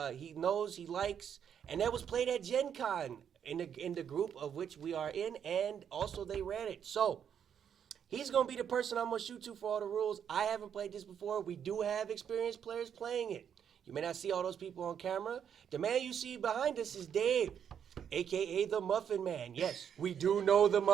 knows, he likes, and that was played at Gen Con in the group of which we are in, and also they ran it. So, he's going to be the person I'm going to shoot to for all the rules. I haven't played this before. We do have experienced players playing it. You may not see all those people on camera. The man you see behind us is Dave, a.k.a. the Muffin Man. Yes, we do know the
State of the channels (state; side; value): quieter; left; 8.3 dB